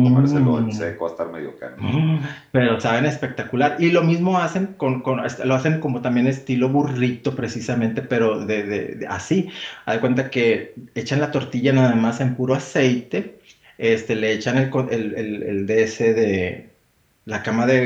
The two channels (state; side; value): identical; both; correlation 1.00